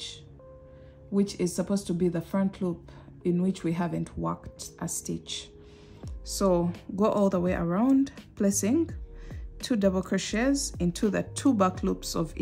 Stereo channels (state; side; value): identical; both; correlation 1.00